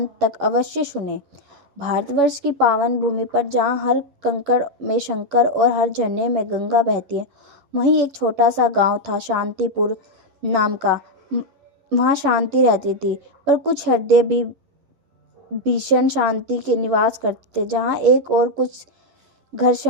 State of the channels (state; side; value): late; left; 11 ms